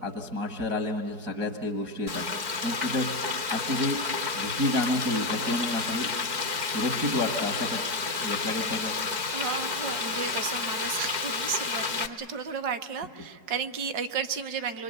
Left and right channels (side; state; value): left; late; 4.7 ms